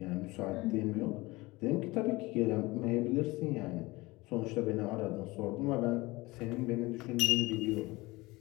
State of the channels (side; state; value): right; quieter; 21.8 dB